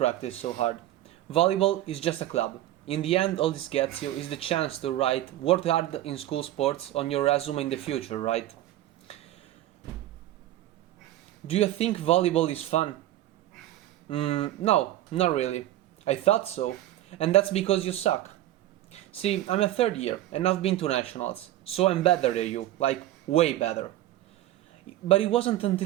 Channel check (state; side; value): quieter; left; 14.2 dB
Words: so hard? Volleyball is just a club. In the end, all this gets you is the chance to write "worked hard in school sports" on your resume in the future, right? Do you think volleyball is fun? No, not really. I thought so. And that's because you suck. See, I'm a third year and I've been to nationals, so I'm better than you, like way better. But it wasn't